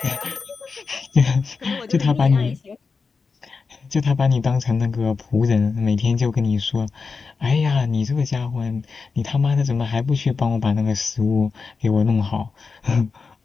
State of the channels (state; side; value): quieter; right; 4.8 dB